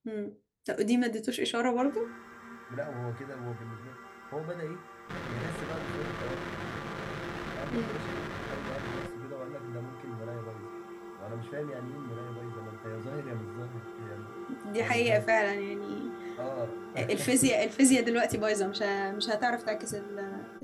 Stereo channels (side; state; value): both; identical; correlation 1.00